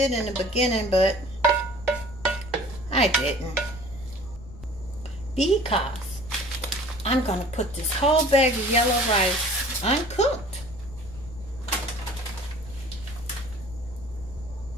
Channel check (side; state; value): left; noise; rumble, 15 dB below the sound